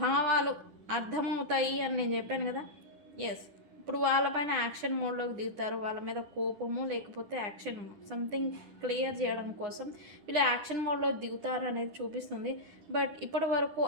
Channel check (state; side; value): late; left; 10 ms